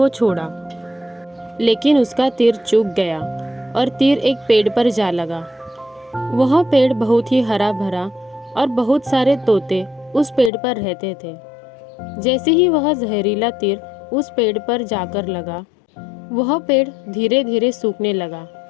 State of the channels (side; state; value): right; drops out; at 10.5 s